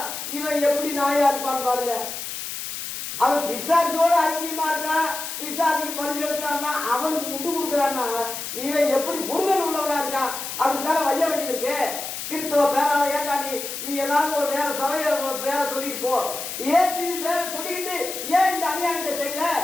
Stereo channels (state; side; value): noise; left; hiss, 6 dB below the sound